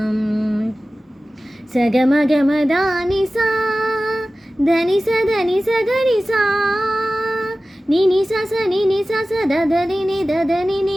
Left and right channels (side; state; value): both; normal; correlation 0.96